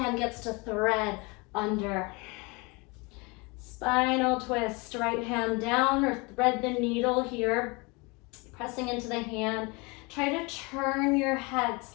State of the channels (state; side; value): quieter; right; 27.6 dB